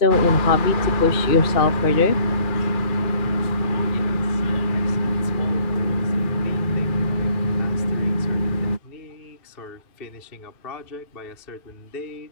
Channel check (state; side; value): late; right; 2.3 ms